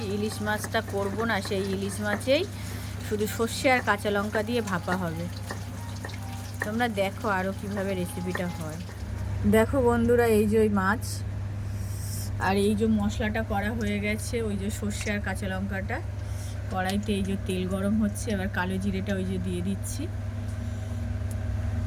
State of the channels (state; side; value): identical; both; correlation 1.00